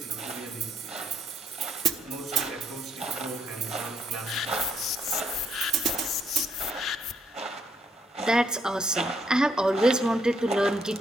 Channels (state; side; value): normal; both; correlation 0.72